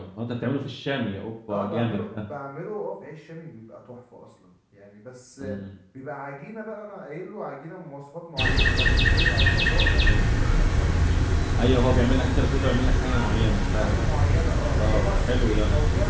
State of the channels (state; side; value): identical; both; correlation 1.00